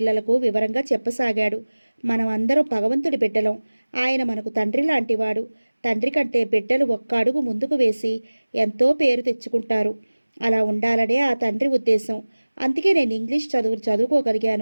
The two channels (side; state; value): both; inverted; correlation -1.00